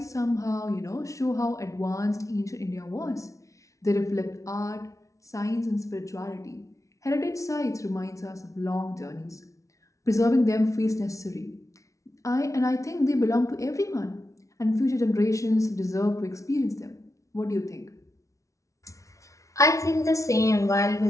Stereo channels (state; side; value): late; right; 0.15 ms